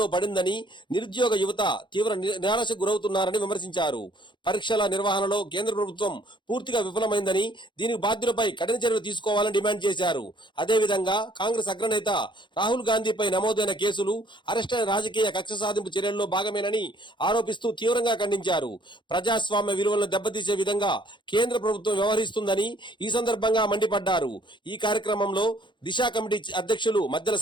పడిందని, నిరుద్యోగ యువత తీవ్ర నిరాశకు గురవుతున్నారని విమర్శించారు. పరీక్షల నిర్వహణలో కేంద్ర ప్రభుత్వం పూర్తిగా విఫలమైందని, దీనికి బాధ్యులపై కఠిన చర్యలు తీసుకోవాలని డిమాండ్ చేశారు. అదేవిధంగా కాంగ్రెస్ అగ్రనేత రాహుల్ గాంధీపై నమోదైన కేసులు అరెస్టైన రాజకీయ కక్ష సాధింపు చర్యల్లో భాగమేనని ఆరోపిస్తూ తీవ్రంగా ఖండించారు. ప్రజాస్వామ్య విలువలను దెబ్బతీసే విధంగా కేంద్ర ప్రభుత్వం వ్యవహరిస్తుందని ఈ సందర్భంగా మండిపడ్డారు. ఈ కార్యక్రమంలో దిశా కమిటీ అధ్యక్షులు మద్దెల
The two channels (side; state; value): right; late; 0.23 ms